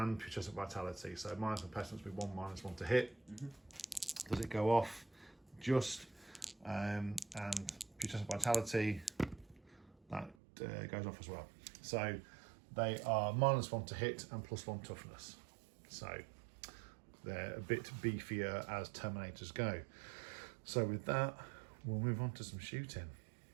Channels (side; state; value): left; drops out; at 10.4 s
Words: Putrescent Vitality. So Miasma of Pestilence with 1 -1 to hit. Does it go off? just, and putrescent vitality, that goes off as well. So they are -1 to hit and +1 toughness. So they're a bit beefier as Terminators go. So with that, we'll move on to some shooting.